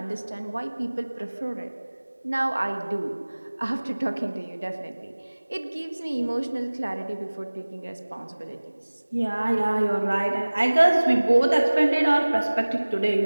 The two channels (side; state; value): both; inverted; correlation -1.00